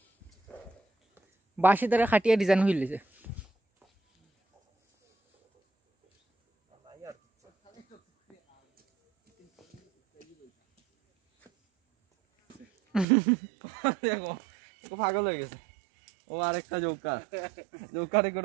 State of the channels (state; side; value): drops out; left; at 13.1 s